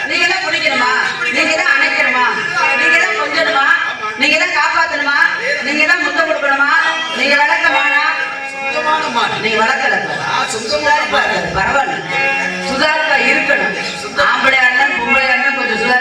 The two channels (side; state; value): both; identical; correlation 1.00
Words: நீங்க தான் பிடிக்கணுமா, நீங்க தான் அணைக்கணுமா, நீங்க தான் கொஞ்சணுமா, நீங்க தான் காப்பாத்தணுமா, நீங்க தான் முத்தம் கொடுக்கணுமா, நீங்க வளர்க்கமானா, நீங்க வளர்க்கல பரவாயில்ல, சுதாரிப்பா இருக்கணும். ஆம்பளையா இருந்தா பொம்பளையா இருந்தா கொஞ்சம்